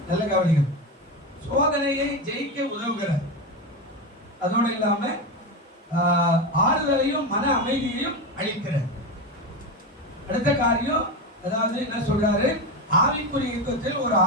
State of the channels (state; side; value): normal; both; correlation 0.17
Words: நல்ல கவனிங்க. சோதனையை ஜெயிக்க உதவுகிறார். அதோடு இல்லாம ஆறுதலையும் மன அமைதியையும் அளிக்கிறார். அடுத்த காரியம், அதாவது என்ன சொல்றாரு? ஆவிக்குரிய யுத்தத்தில் ஒரு